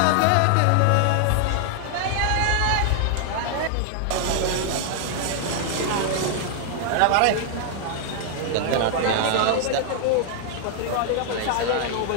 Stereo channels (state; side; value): different; both; correlation 0.00